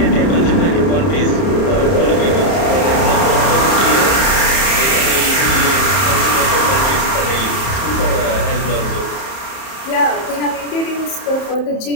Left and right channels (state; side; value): late; right; 31 ms